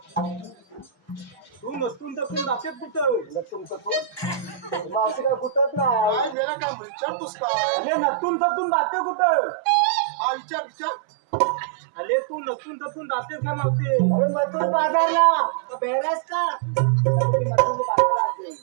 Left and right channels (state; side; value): drops out; left; at 6.4 s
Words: तू नसून तर जाते कुठं लटून तटून मावशी काय कुठत नाही काय गेला का विचारतोस काय अरे नसून तसून जाते कुठं हा विचार अरे तू नसून तसून जातेस का नव्हते अरे मथुर बाजारला बेहरास का मथुर बाजारला